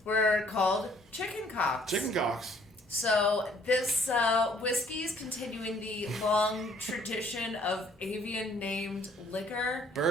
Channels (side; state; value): both; normal; correlation 0.62